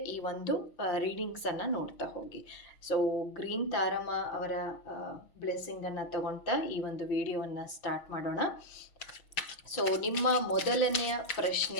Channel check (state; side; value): late; right; 6.1 ms